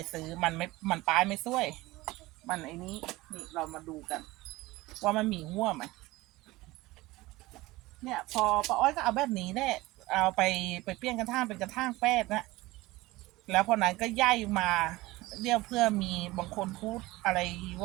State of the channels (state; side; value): quieter; left; 19.8 dB